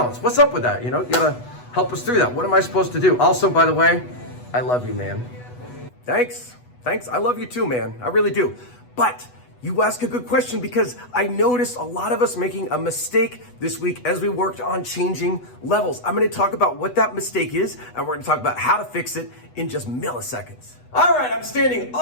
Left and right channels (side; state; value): right; late; 8.1 ms